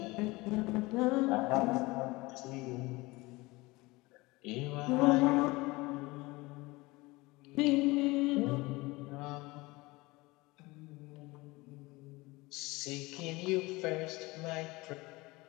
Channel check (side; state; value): right; quieter; 22.3 dB